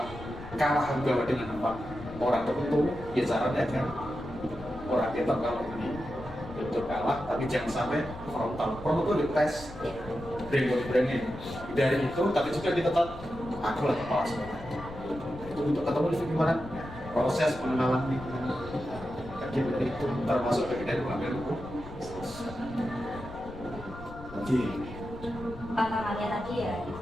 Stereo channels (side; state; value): left; noise; rumble, 14 dB below the sound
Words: kalah juga dengan apa orang tertentu, ya caranya kan orang kita kalau ini betul kalah, tapi jangan sampai frontal. Frontal itu dites, brain dari itu, tapi juga kita tetap aku lah kepala sekolah. Itu untuk ketemu di gimana proses pengenalan lingkungan. Jadi itu termasuk bagian dari pengambil hukum. Jadi tantangannya tadi ya, itu